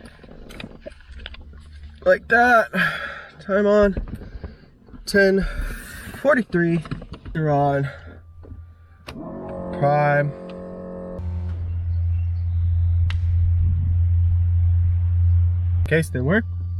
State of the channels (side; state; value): both; identical; correlation 1.00